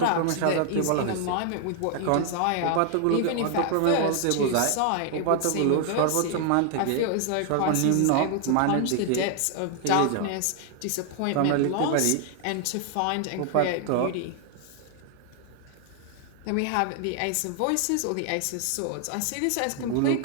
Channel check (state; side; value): different; both; correlation 0.00